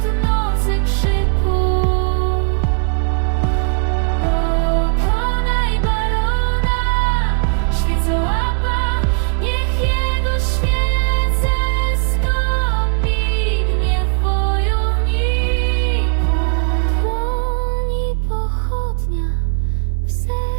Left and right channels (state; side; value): silent; left; 58 dB below the other